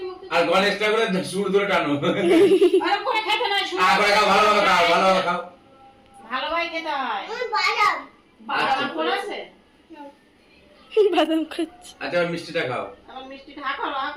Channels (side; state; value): both; identical; correlation 1.00